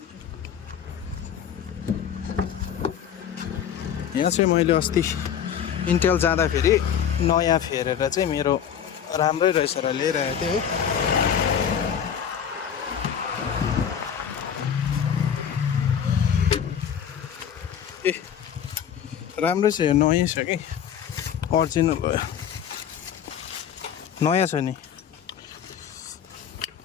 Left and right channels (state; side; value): quieter; right; 8.6 dB